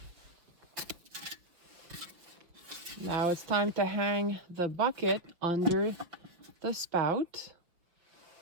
Now it's time to hang the bucket under the spout.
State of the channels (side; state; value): left; late; 6.1 ms